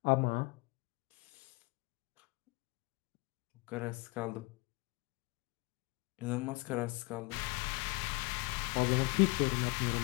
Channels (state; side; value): quieter; right; 25.8 dB